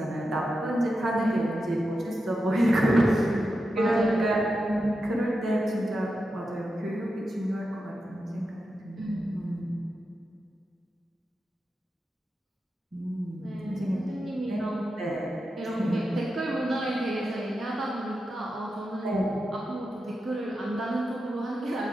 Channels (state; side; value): normal; both; correlation 0.89